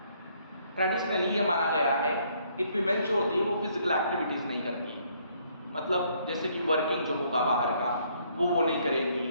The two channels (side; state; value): both; inverted; correlation -0.67